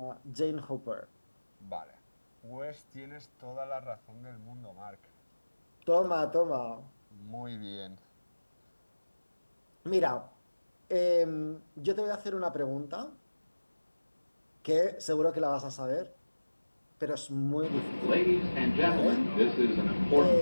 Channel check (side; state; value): both; inverted; correlation -1.00